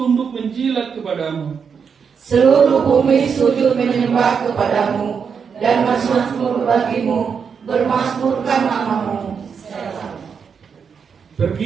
menjilat kepadamu. Seluruh bumi sujud menyembah kepadamu, dan bermasmur bagimu, bermasmurkan namamu.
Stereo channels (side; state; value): left; quieter; 6.4 dB